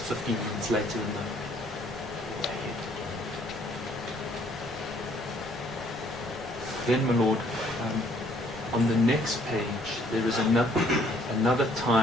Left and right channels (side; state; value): both; normal; correlation 0.63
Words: 15 minutes later than the ahead. Then, my Lord, on the next page there is another